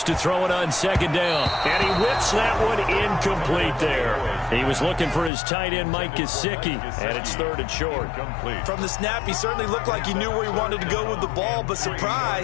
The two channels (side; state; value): right; drops out; at 5.3 s